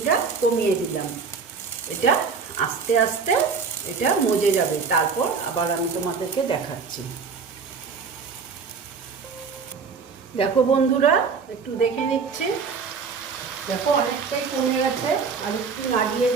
কমিয়ে দিলাম। এটা আস্তে আস্তে এটা মজে যাবে, তারপর আবার আমি তোমাদেরকে দেখাচ্ছি। দেখো বন্ধুরা, একটু দেখে নিচ্ছি। দেখো অনেকটাই কমে গেছে, আর একটু নাড়িয়ে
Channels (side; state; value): left; quieter; 5.4 dB